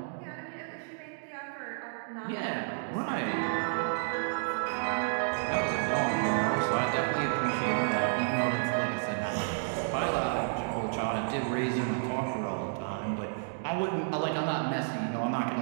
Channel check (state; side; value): silent; left; digital silence